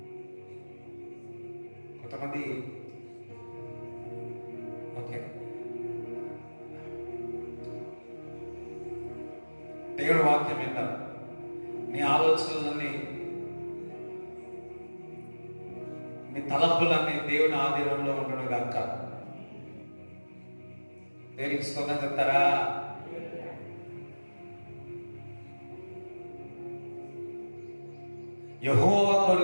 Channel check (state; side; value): inverted; both; correlation -1.00